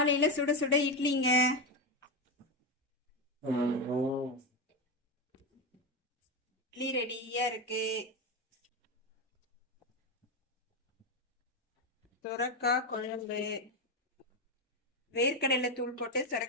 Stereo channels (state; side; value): normal; both; correlation 0.11